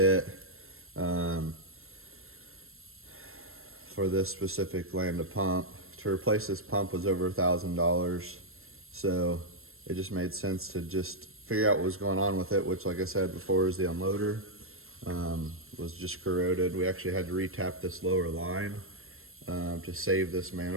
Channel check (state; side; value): late; left; 0.62 ms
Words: for this specific Lambda pump. To replace this pump was over $1,000. So it just made sense to just figure out what was going on with it, which, like I said before, is the unloader was just corroded. We actually had to retap this lower line to save this